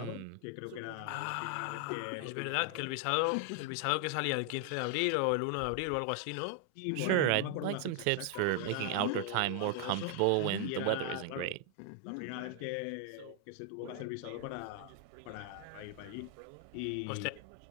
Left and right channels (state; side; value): different; both; correlation 0.00